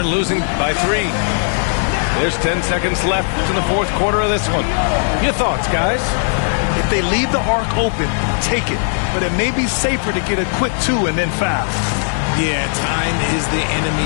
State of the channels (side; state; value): right; silent; 61 dB below the other